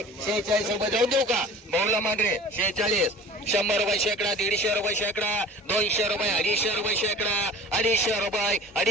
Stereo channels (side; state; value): both; normal; correlation 0.43